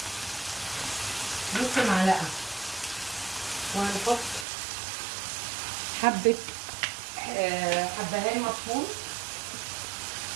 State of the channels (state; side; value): drops out; left; at 4.5 s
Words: نص معلقه، وهنحط حبه حبهان مطحون،